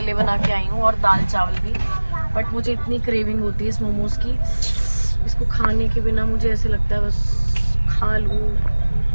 बना के आई हूँ और दाल चावल भी। बट मुझे इतनी क्रेविंग होती है इस मोमोज की, इसको खाने के बिना मुझे ऐसे लगता है बस खा लूँ,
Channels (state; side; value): inverted; both; correlation -1.00